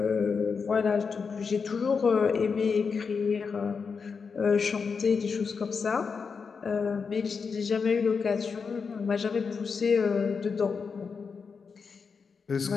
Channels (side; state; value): right; quieter; 5.5 dB